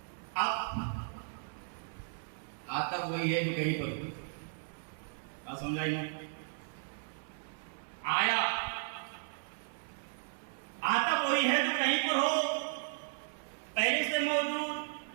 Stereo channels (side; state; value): left; silent; 54 dB below the other